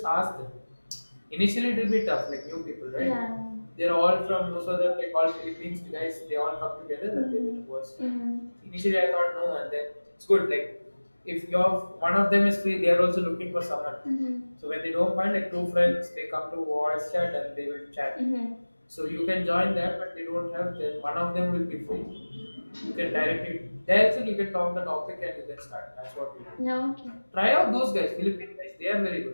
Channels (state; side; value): inverted; both; correlation -1.00